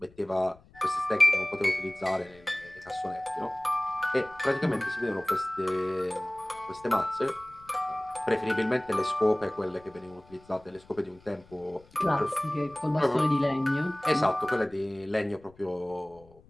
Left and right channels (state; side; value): noise; left; rumble, 26 dB below the sound